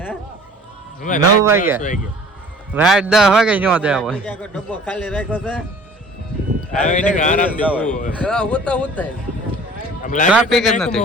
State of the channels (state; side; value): normal; both; correlation 0.48